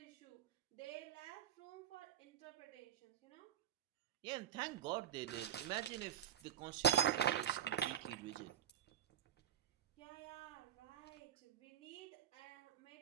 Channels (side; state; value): left; quieter; 10.2 dB